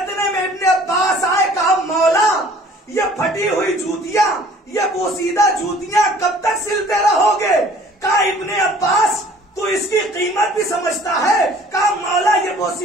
میں ابن عباس آئے، کہا مولا یہ پھٹی ہوئی جوتیاں، یہ بوسیدہ جوتیاں کب تک سلتے رہو گے؟ کہا ابن عباس تو اس کی قیمت بھی سمجھتا ہے؟ کہا مولا یہ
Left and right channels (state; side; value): normal; both; correlation 0.53